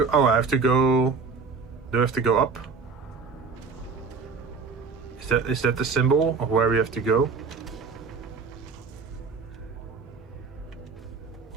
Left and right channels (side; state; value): left; quieter; 5.0 dB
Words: Oh, I have to go... Do I have to go up? Is that the symbol of where we have to go?